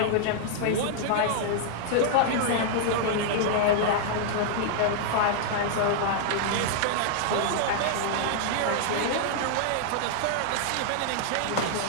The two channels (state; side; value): different; both; correlation -0.01